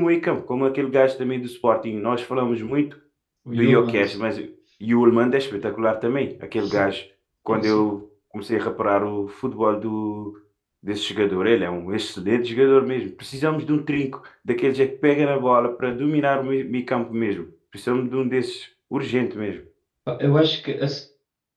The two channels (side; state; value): both; identical; correlation 1.00